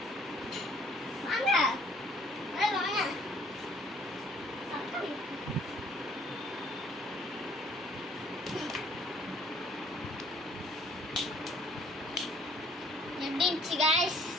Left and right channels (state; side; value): normal; both; correlation 0.59